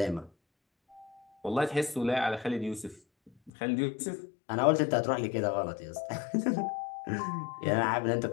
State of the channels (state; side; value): drops out; right; at 3.5 s